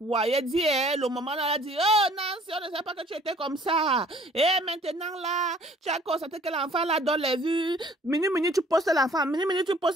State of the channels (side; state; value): both; normal; correlation 0.56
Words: elle dit, le moment où elle a dit, oh, Nancy, on ne sait pas que tu étais comme ça, et maintenant là, tu as constaté que l'enfant là donne les vues, minute, tu postes l'enfant, minute, tu